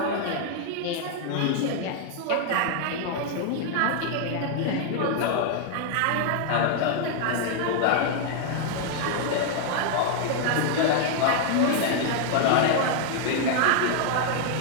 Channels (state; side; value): different; both; correlation 0.00